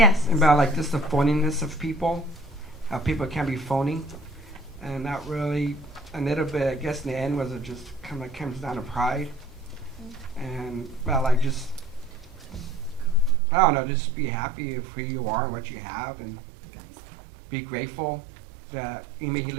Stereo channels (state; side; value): drops out; left; at 13.4 s